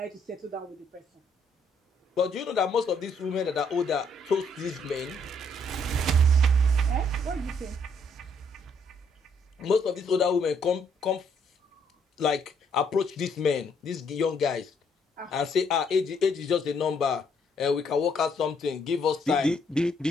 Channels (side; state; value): both; normal; correlation 0.69